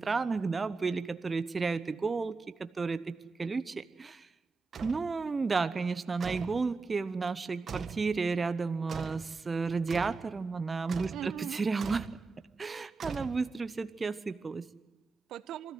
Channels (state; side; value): quieter; left; 4.2 dB